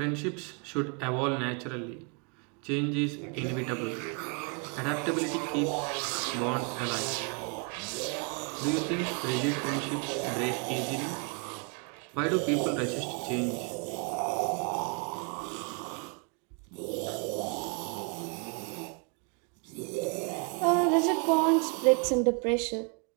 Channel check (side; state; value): left; quieter; 35.4 dB